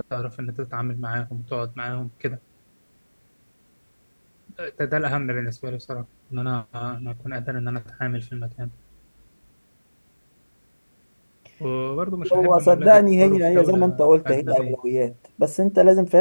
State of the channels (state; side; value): inverted; both; correlation -1.00